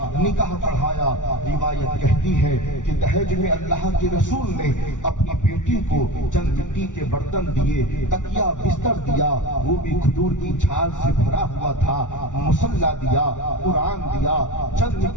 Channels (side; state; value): right; late; 0.87 ms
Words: نکاح پڑھایا۔ روایت کہتی ہے کہ دہیج میں اللہ کے رسول نے اپنی بیٹی کو چند مٹی کے برتن دیے، تکیہ بستر دیا، وہ بھی کھجور کی چھال سے بھرا ہوا تھا، مصلی دیا، قرآن دیا، چند